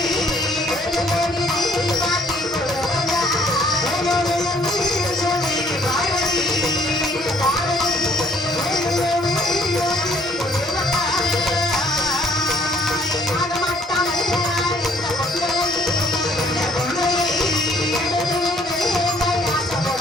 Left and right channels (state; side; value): normal; both; correlation 0.63